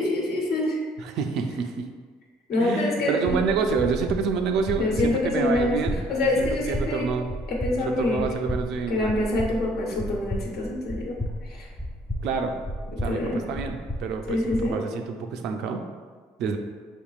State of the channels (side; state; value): both; normal; correlation 0.60